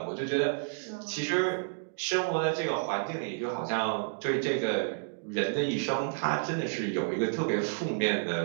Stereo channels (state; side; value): silent; left; digital silence